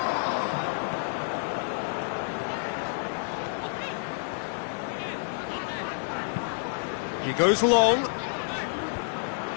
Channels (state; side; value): silent; right; digital silence